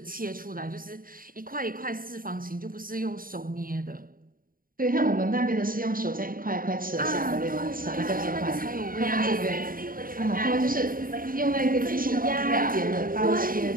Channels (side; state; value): left; late; 0.41 ms